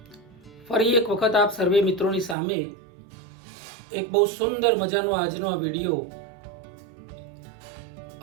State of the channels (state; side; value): drops out; left; at 2.4 s